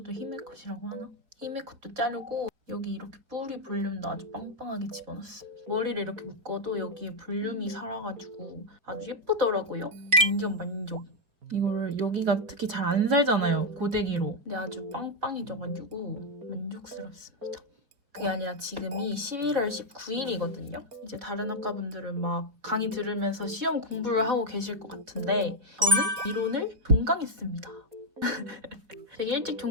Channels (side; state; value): left; late; 4.3 ms